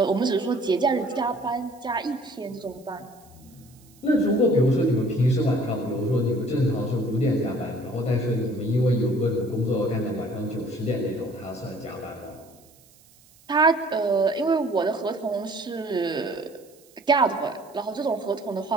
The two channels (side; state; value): right; noise; hiss, 28 dB below the sound